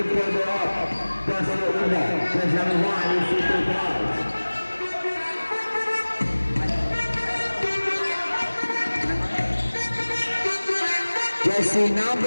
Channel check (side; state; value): both; inverted; correlation -1.00